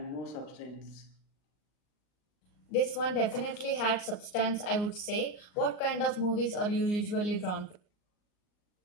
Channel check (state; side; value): late; right; 39 ms